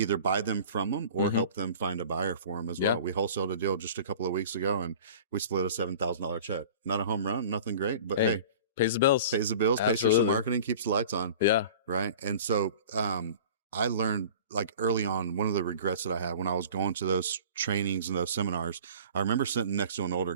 buy them from them or help them find a buyer for them as well. We wholesaled a deal just a couple of weeks ago, and we split a $7,000 check. Not a home run, nothing great, but hey, pays the bills, Absolutely. Pays for some marketing, keeps the lights on. Yeah. Right. And so, I learned, like, early on, one of the regrets that I had when I was going to those trainings and those seminars, I remember sitting next to an older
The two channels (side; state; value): both; inverted; correlation -0.42